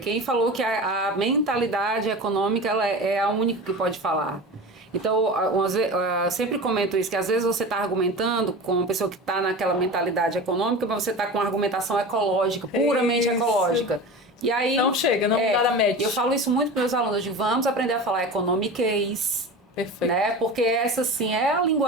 Quem falou que a mentalidade econômica ela é a única que pode falar. Então, eu sempre comento isso, que às vezes você está argumentando com uma pessoa que está naquela mentalidade econômica, mas você está com uma argumentação ecológica, puramente ecológica. E aí, não chega, não dá nada match. Eu falo isso muito para meus alunos, eu digo, vamos aprender a falar economiquez. Perfeito. Né? Porque essa sim é a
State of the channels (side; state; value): both; normal; correlation 0.31